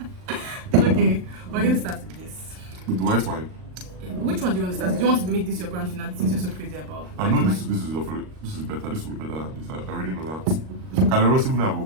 Okay, we're going to start with this. With the white wine. Yeah. which one do you want to start? Do you want to make this your grand finale since you're so crazy about? I know this is better. This will be better than this. I already know that. Calaros, even I've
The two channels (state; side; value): late; left; 38 ms